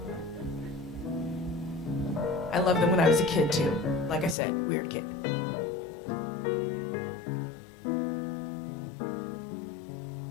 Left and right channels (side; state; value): right; drops out; at 4.4 s